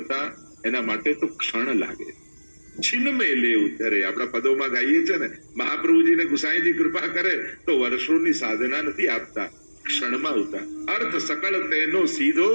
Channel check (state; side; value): inverted; both; correlation -1.00